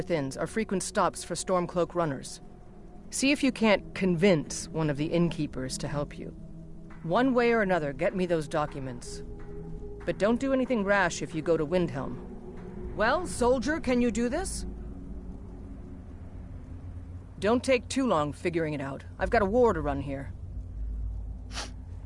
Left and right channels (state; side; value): identical; both; correlation 1.00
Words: Inns are frequent stops for Stormcloak runners. See if you can't convince one of the innkeepers to help you. One way or another, get me those documents. But don't do anything rash if you go to Windhelm. Well, soldier, can you do this? Don't take too long figuring it out. I've got a war to run here.